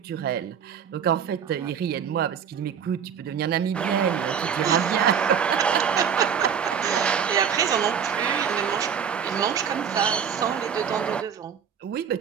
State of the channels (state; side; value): quieter; left; 7.7 dB